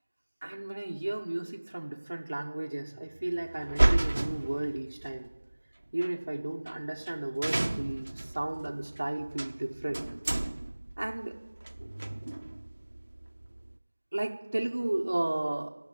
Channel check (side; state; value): both; inverted; correlation -1.00